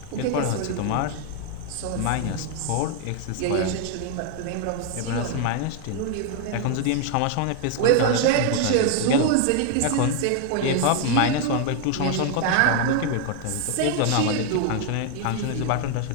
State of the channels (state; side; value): different; both; correlation 0.00